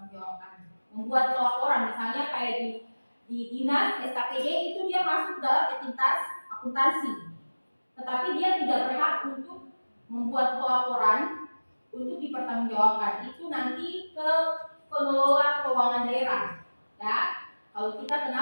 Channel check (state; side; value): inverted; both; correlation -1.00